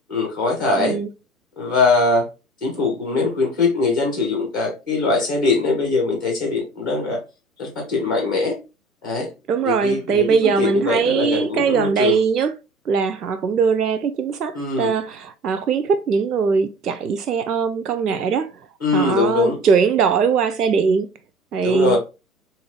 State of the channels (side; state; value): both; normal; correlation 0.43